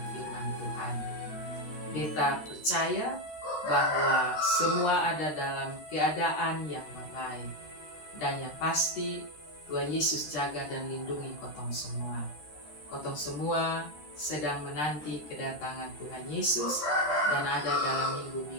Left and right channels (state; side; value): late; right; 13 ms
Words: firman Tuhan. Kita percaya bahwa semua ada dalam keadaan yang baik. Dan yang pasti Tuhan Yesus jaga dan lindungi Kotong semua. Kotong semua sedang menanti kedatangan Tuhan Yesus dan ada dalam